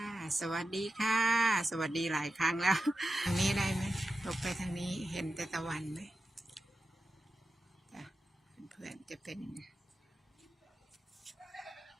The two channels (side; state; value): both; normal; correlation 0.91